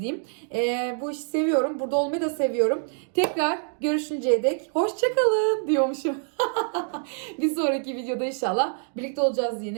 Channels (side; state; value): left; silent; 61 dB below the other